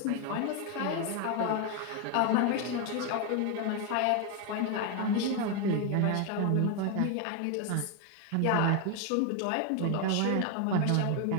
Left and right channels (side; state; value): both; different; correlation 0.01